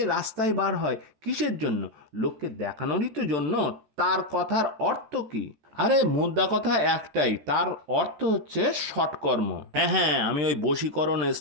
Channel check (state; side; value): late; left; 14 ms